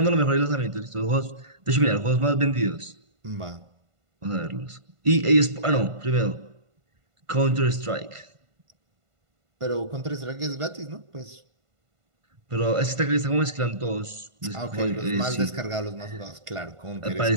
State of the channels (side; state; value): left; late; 1.5 ms